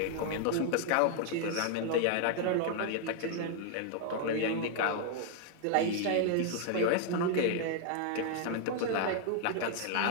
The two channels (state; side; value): different; both; correlation 0.00